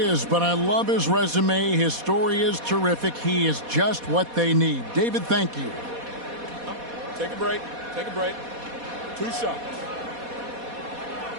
but I love his resume. His story is terrific. He is just what they need. David, thank you. Take a break. Take a break. 2 shots.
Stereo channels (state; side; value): late; left; 4.2 ms